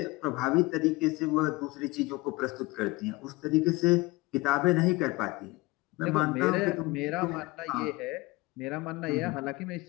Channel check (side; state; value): right; quieter; 22.1 dB